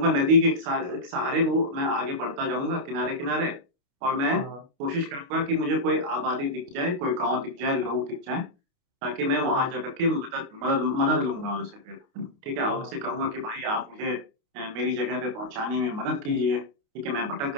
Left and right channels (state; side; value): late; left; 29 ms